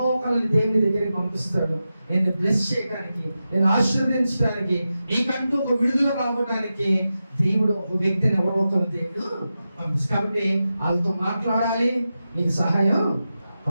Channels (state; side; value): inverted; both; correlation -0.91